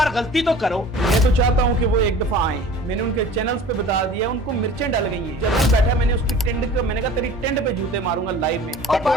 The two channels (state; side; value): normal; both; correlation 0.43